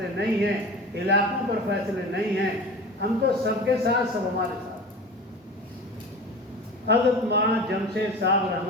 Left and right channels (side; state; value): both; normal; correlation 0.34